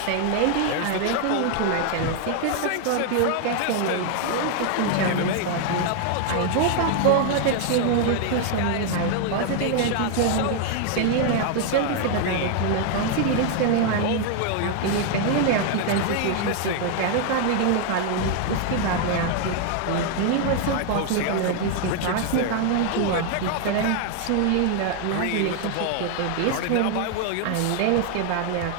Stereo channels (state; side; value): different; both; correlation 0.00